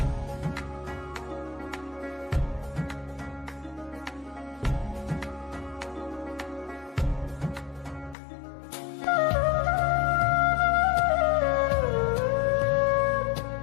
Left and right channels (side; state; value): right; drops out; at 8.2 s